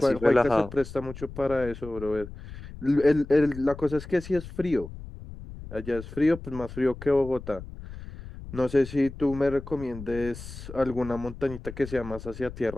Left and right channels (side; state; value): left; noise; rumble, 13 dB below the sound